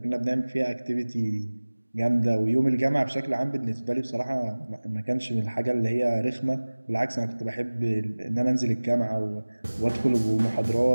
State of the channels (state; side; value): inverted; both; correlation -1.00